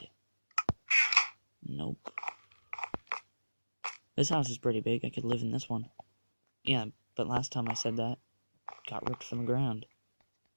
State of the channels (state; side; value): inverted; both; correlation -1.00